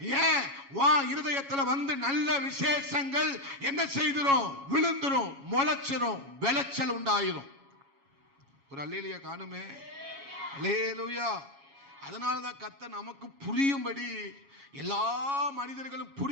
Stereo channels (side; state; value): left; late; 7.2 ms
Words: ஏன் வா இருதயத்துல வந்து நல்ல விசேஷங்கள் என்ன செய்திரும், விழுந்துரும், முளைச்சிரும், விளைச்சல் உண்டாயிரும். ஒரு அல்லேலூயா காணுமே, அல்லேலூயா. அதனாலதான் கர்த்தர் நமக்கு புரியும்படி, எல்லா மனிதர்களும்